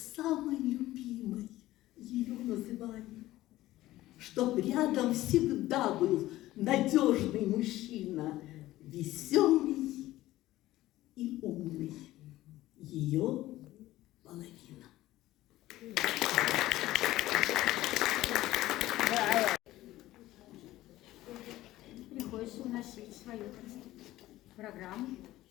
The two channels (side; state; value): right; quieter; 16.0 dB